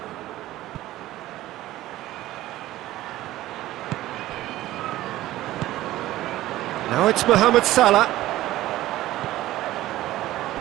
Now it's Mohamed Salah.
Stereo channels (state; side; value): quieter; left; 15.5 dB